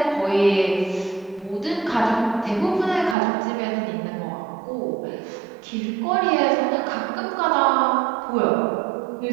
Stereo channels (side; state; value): left; drops out; at 3.2 s